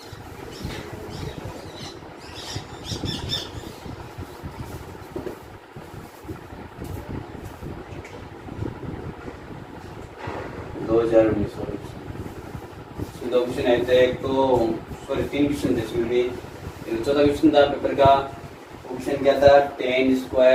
दो क्वेश्चन आए थे, एक तो सॉरी 3 क्वेश्चन थे इसमें भी। चौथा क्वेश्चन था पेपर का, क्वेश्चन क्या था, tan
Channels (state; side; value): identical; both; correlation 1.00